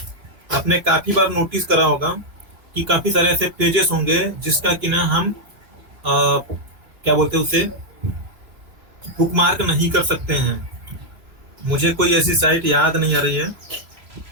आपने काफी बार नोटिस करा होगा कि काफी सारे ऐसे पेजेस होंगे जिसका कि ना हम क्या बोलते हैं उसे, बुकमार्क नहीं कर सकते हैं। मुझे कोई ऐसी साइट याद नहीं आ रही है।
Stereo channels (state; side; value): late; left; 3.0 ms